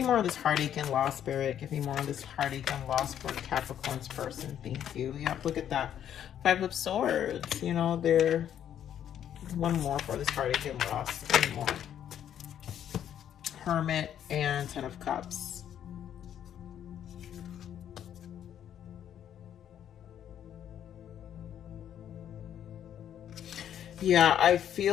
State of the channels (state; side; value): quieter; right; 10.0 dB